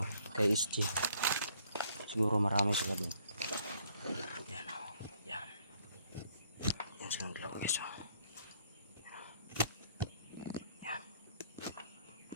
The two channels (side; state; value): both; inverted; correlation -0.65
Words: kay SG. Siguro marami sila dun. Yan. Yan. Yan silang dalawa guys. Yan.